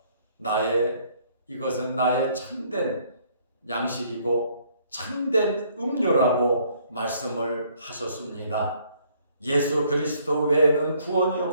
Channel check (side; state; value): both; inverted; correlation -0.64